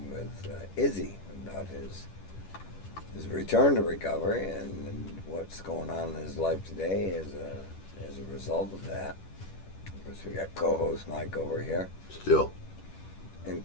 with Izzy about his return to recovery and what's going on in his life today as a result of that. Of course, we got co-host Mike over here, Still.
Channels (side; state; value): right; late; 10 ms